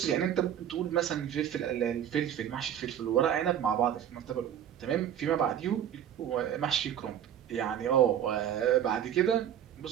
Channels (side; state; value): left; quieter; 9.9 dB